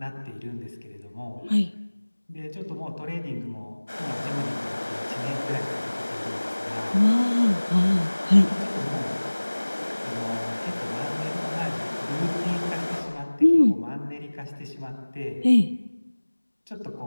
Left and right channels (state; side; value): inverted; both; correlation -1.00